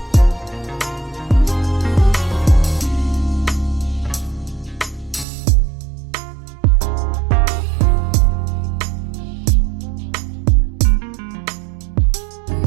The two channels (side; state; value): left; drops out; at 5.2 s